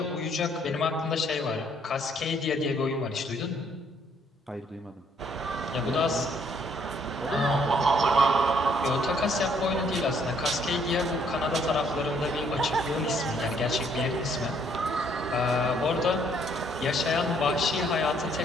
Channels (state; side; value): normal; both; correlation 0.66